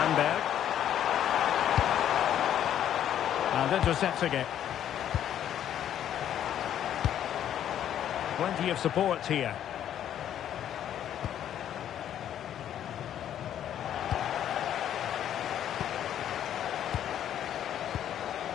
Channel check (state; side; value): quieter; right; 10.5 dB